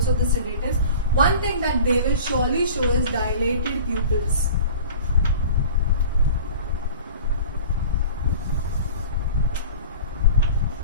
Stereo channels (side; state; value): both; inverted; correlation -0.40